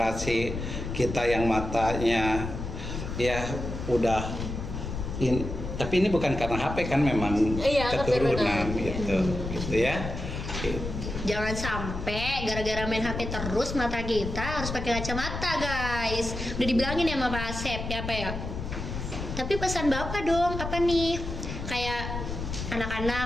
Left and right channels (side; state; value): left; noise; rumble, 6 dB below the sound